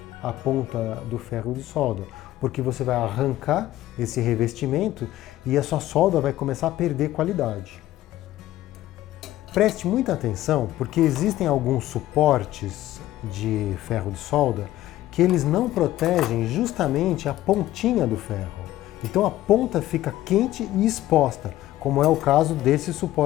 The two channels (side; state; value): right; quieter; 14.9 dB